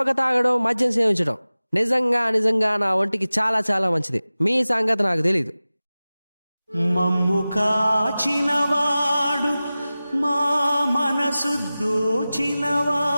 తాగడం, మద్యం సేవించడం నిజంగా నా ఒంటికి చాలా చాలా మంచిది. మీ సంగతి నాకు తెలీదు. మమ్ము కాచినవాడు, మా మనసు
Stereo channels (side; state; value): both; inverted; correlation -0.97